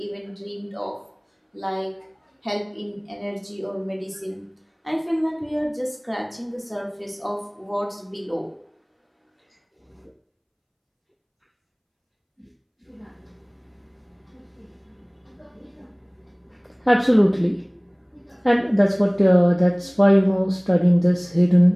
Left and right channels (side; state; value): both; identical; correlation 1.00